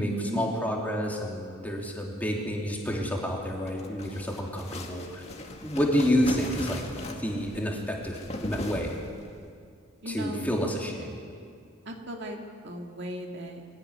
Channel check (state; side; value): normal; both; correlation 0.71